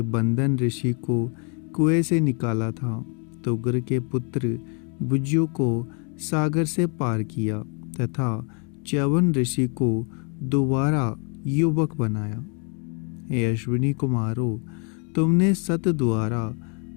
बंदन ऋषि को कुएं से निकाला था। तुगर के पुत्र बुज्जु को सागर से पार किया तथा च्यवन ऋषि को दोबारा युवक बनाया। हे अश्विनी कुमारों, तुमने सत द्वारा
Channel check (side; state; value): right; quieter; 37.2 dB